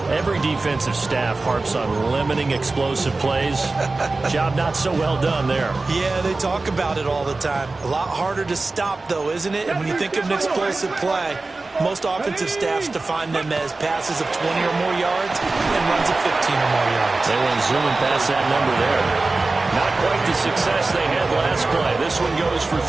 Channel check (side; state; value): left; quieter; 3.4 dB